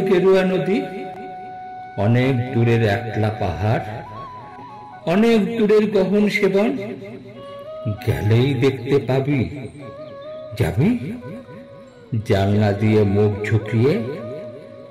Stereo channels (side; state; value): both; identical; correlation 1.00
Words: গেরুয়া নদী, অনেক দূরের একলা পাহাড়, অনেক দূরের গহন সেবন, গেলেই দেখতে পাবি। যাবি? জানলা দিয়ে মুখ ঝুঁকিয়ে